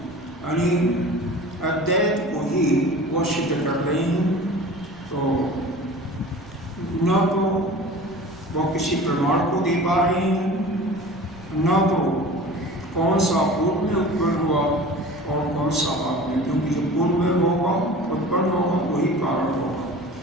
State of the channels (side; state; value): right; noise; rumble, 23 dB below the sound